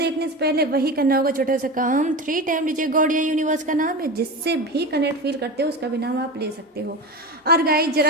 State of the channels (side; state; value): both; normal; correlation 0.25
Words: से पहले वही करना होगा छोटा सा काम, 3 टाइम लीजिए गॉड या यूनिवर्स का नाम है, जिससे भी कनेक्ट फील करते हो उसका भी नाम आप ले सकते हो। और गाइस